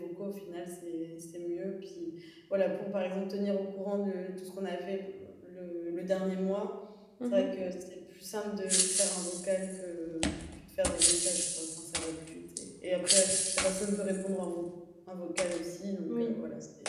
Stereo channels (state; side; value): identical; both; correlation 1.00